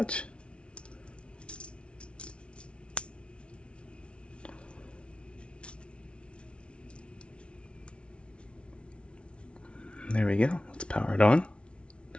There we go. Let's power it on.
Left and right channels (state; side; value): late; right; 0.059 ms